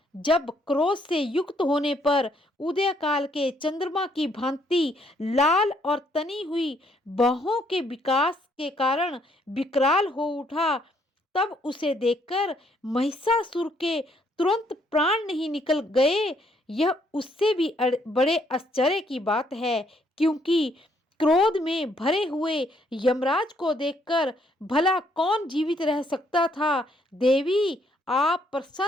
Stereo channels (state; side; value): normal; both; correlation 0.69